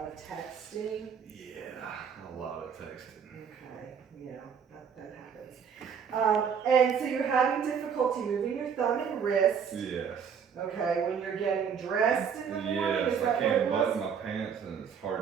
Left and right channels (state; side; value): quieter; left; 7.1 dB